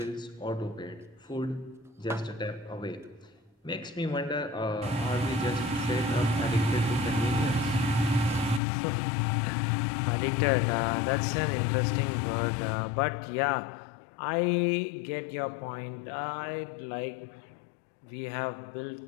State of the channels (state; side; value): drops out; right; at 8.6 s